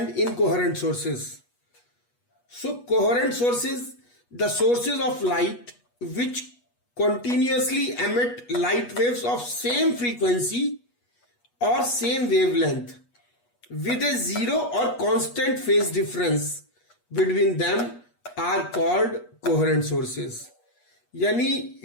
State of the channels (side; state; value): right; late; 8.3 ms